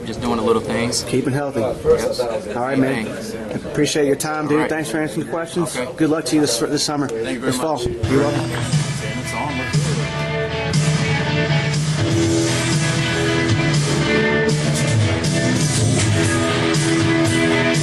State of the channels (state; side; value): identical; both; correlation 1.00